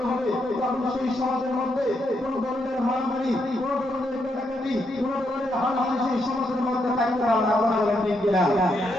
হবে তখন সেই সমাজের মধ্যে কোন ধরনের মারামারি, কোন ধরনের কাটাকাটি, কোন ধরনের হানাহানি সেই সমাজের মধ্যে থাকতে পারবে না। আপনারা বলেন ঠিক কিনা?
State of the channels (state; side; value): normal; both; correlation 0.79